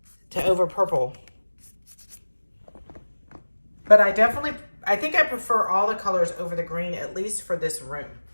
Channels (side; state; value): both; inverted; correlation -1.00